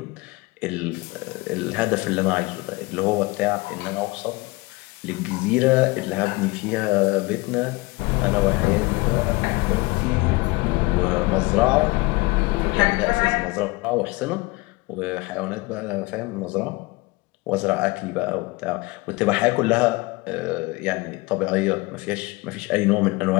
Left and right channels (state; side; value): quieter; right; 23.7 dB